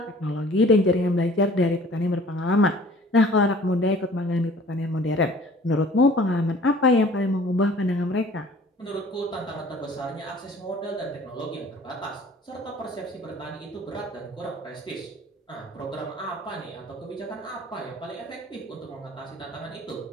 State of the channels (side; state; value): both; normal; correlation 0.50